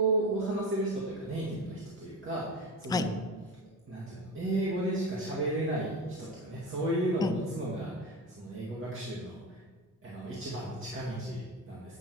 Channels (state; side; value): normal; both; correlation 0.27